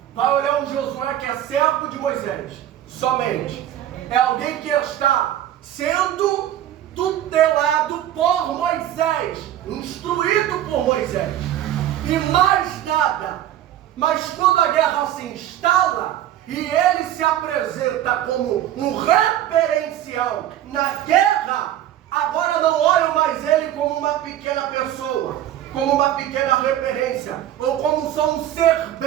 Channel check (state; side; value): quieter; left; 12.0 dB